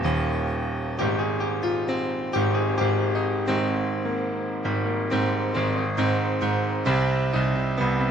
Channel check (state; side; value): normal; both; correlation 0.70